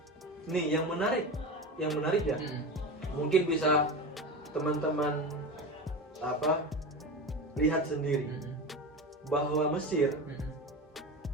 Nih yang menarik ya. Mungkin bisa teman-teman lihat sendiri bahwa Mesir,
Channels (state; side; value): normal; both; correlation 0.25